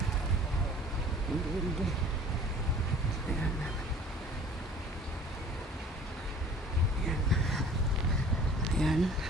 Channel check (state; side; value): normal; both; correlation 0.48